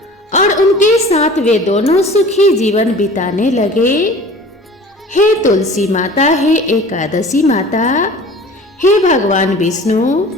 और उनके साथ वे दोनों सुखी जीवन बिताने लगे। हे तुलसी माता, हे एकादशी माता, हे भगवान विष्णु,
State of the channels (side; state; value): both; normal; correlation 0.43